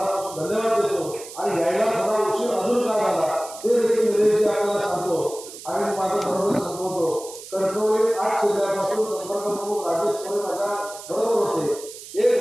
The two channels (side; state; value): right; noise; hiss, 14 dB below the sound